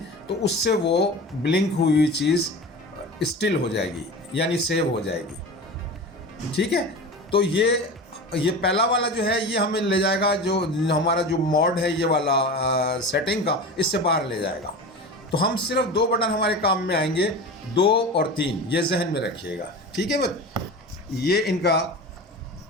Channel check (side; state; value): both; normal; correlation 0.31